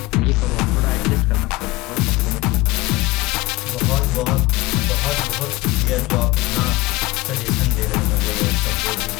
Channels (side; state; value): right; quieter; 20.4 dB